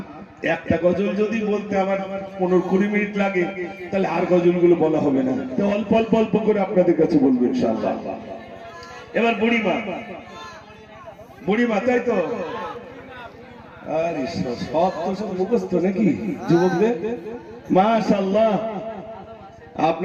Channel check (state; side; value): identical; both; correlation 1.00